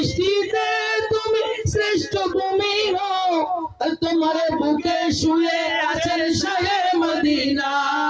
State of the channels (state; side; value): identical; both; correlation 1.00